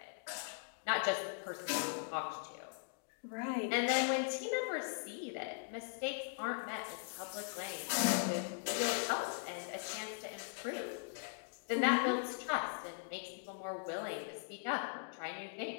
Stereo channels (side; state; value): right; silent; digital silence